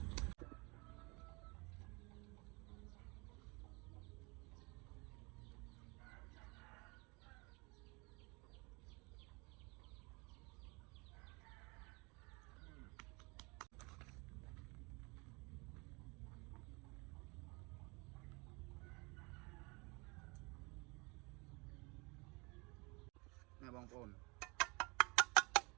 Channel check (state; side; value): quieter; left; 28.1 dB